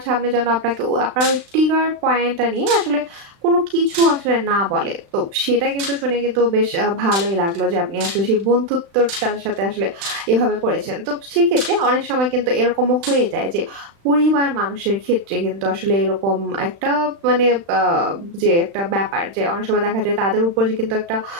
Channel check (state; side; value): late; left; 36 ms